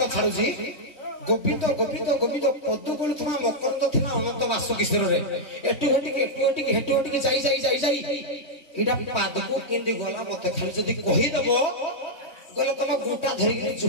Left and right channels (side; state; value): right; late; 3.2 ms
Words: छाडू जी गोविंद गोविंद गोविंद पदु बोलुथमा मकरंद थिला अनंत वासुकेश्वर रे एटू हेटू जाई इडा पादको केंदी गला मते खाली जदी कहि दबो गला तम गुटा धरि के